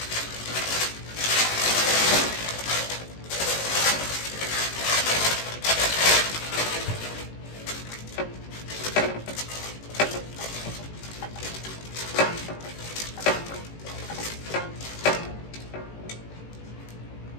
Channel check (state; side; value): late; right; 18 ms